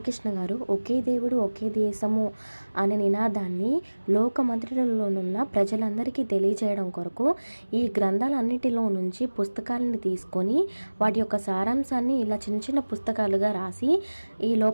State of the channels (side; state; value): both; inverted; correlation -1.00